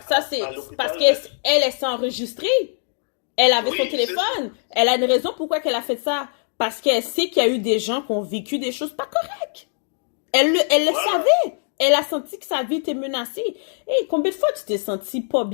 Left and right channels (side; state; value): right; silent; digital silence